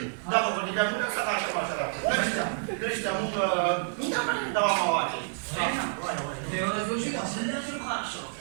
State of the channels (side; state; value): left; silent; digital silence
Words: دغه خو دې بیا موږ څخه تماشه راځي نشته موږ دا باندې دوام واخلي